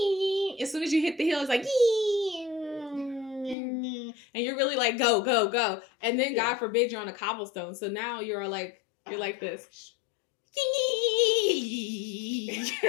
as soon as you hit the hill, it's like, and you're really like, go, go, go. And then God forbid you're on a cobblestone. So now you're like this.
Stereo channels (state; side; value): drops out; right; at 3.6 s